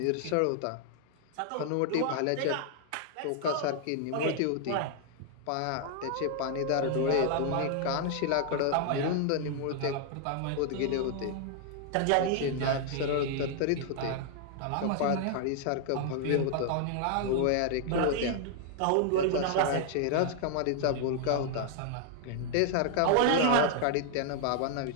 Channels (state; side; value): different; both; correlation 0.00